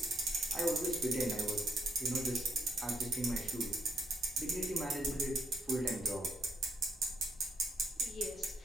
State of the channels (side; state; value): both; normal; correlation 0.72